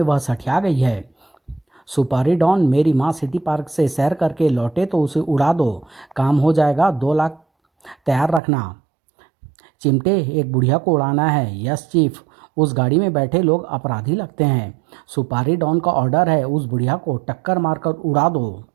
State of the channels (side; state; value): left; drops out; at 8.4 s